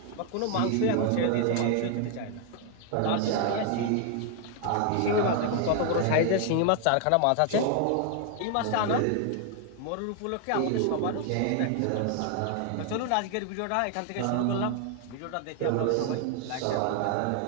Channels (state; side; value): different; both; correlation 0.00